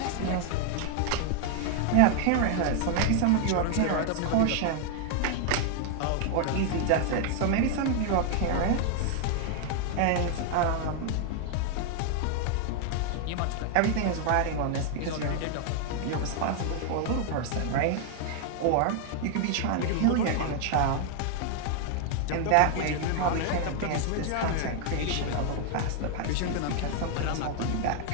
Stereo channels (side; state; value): both; different; correlation 0.00